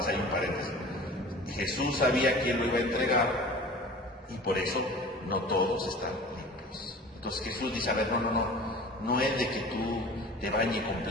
ahí un paréntesis. Jesús sabía quién lo iba a entregar y por eso no todos están limpios. Entonces Jesús dice, a ver, no es de que tú te bañes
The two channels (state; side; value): normal; both; correlation 0.40